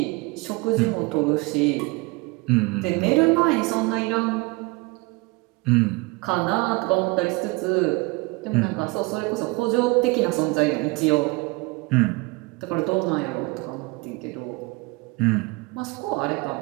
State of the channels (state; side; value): quieter; left; 25.6 dB